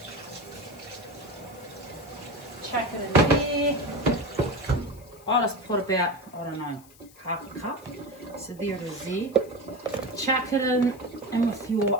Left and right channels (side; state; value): left; noise; hiss, 24 dB below the sound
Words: Chuck it in there. I'll just put about, I don't know, half a cup. So there it is there. Chuck it in with